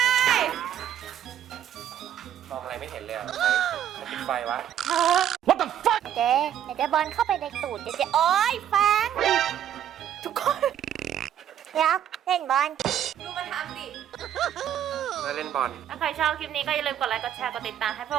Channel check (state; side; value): quieter; left; 10.3 dB